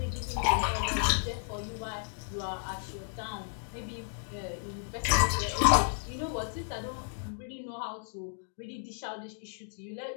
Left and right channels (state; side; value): silent; right; digital silence